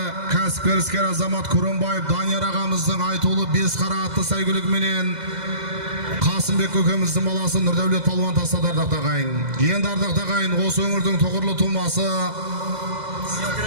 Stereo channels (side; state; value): left; late; 2.0 ms